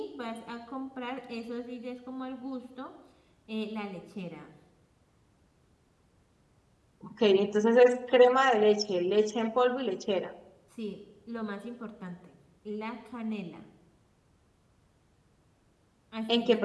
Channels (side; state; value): both; identical; correlation 1.00